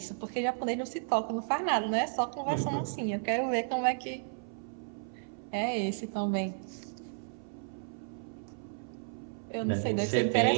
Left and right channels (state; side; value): silent; left; 56 dB below the other